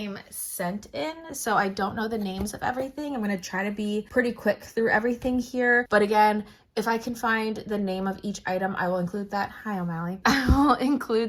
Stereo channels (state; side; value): identical; both; correlation 1.00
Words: sent in, so I don't know the names of everything. I'm going to try to be pretty quick through everything here, but again, if I can find the name of each item, I will include that. Hi, O'Malley. I will